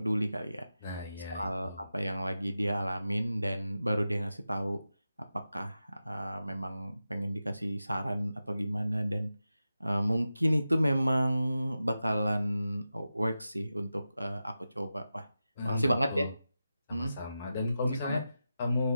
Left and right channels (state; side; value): inverted; both; correlation -0.92